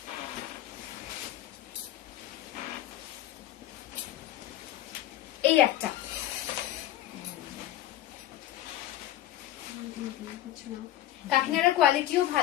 এই একটা কাকিনাড়ার কোয়ালিটিও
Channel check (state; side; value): quieter; right; 13.5 dB